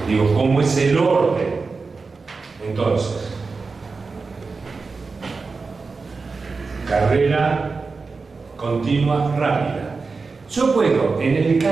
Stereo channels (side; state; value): left; quieter; 4.3 dB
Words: Digo, ¿cómo es el orden? Entonces, carrera continua rápida. Yo puedo, en el